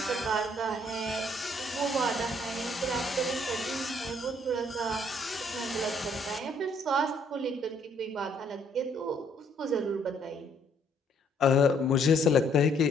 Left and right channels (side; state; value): both; normal; correlation 0.66